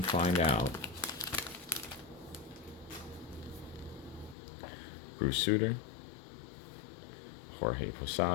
out. Bruce Sutter, Jorge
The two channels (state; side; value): drops out; right; at 4.4 s